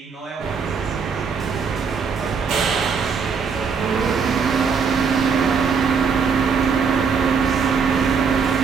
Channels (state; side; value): quieter; left; 5.8 dB